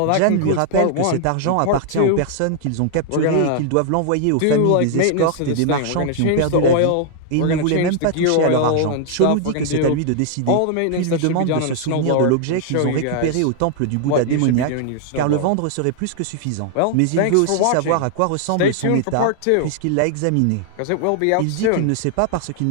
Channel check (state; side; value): different; both; correlation 0.00